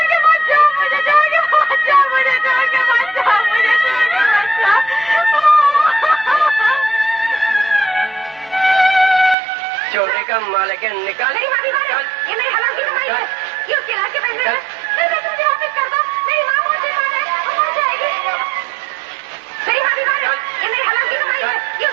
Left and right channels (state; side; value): drops out; left; at 9.3 s